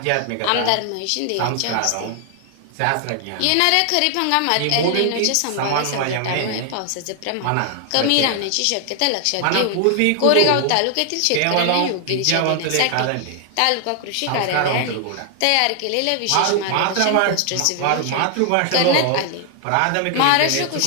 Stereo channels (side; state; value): both; different; correlation 0.00